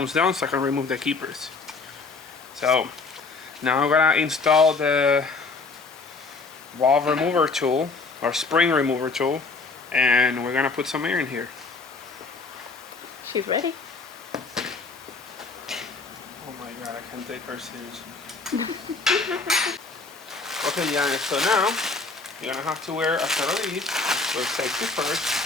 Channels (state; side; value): quieter; right; 4.1 dB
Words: down so I can remove the keepers. So now I'm gonna install the valve remover tool or spring remover tool, and we're gonna put some air in here. She's ready. Oh my god, I can't take her seriously. Okay, Janice, so now you're gonna have to wear a set of these with safety first.